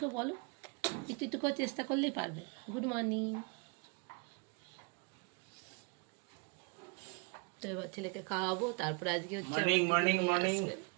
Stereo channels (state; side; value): quieter; left; 33.7 dB